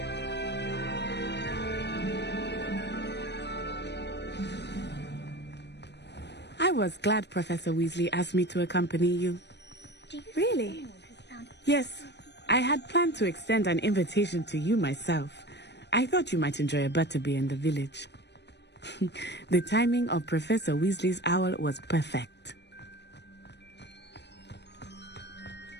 I was glad Professor Weasley asked me to accompany you. Really? Yes. I had planned to extend an invitation to you myself. I thought you might enjoy a butterbeer in the village. The timing of Professor Weasley's owl was perfect.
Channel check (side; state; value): right; late; 0.50 ms